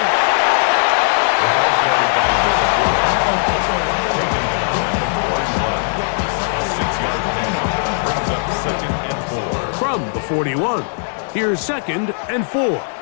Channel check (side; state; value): right; silent; digital silence